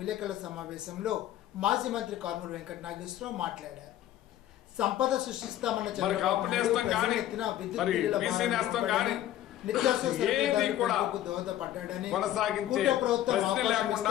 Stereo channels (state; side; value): quieter; right; 12.9 dB